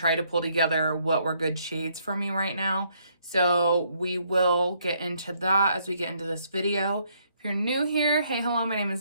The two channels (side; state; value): both; inverted; correlation -0.70